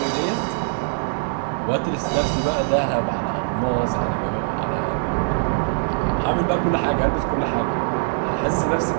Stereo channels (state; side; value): silent; left; digital silence